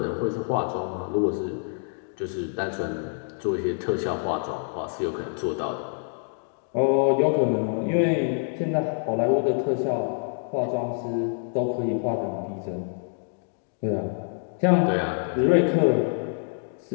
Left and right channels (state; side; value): silent; right; 61 dB below the other